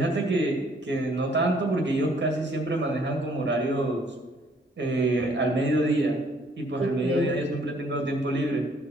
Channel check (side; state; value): both; normal; correlation 0.63